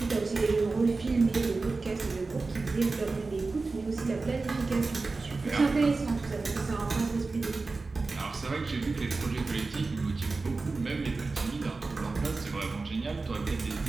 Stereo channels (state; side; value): quieter; left; 3.8 dB